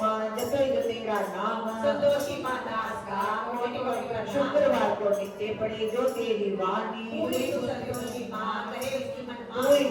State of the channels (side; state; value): both; identical; correlation 1.00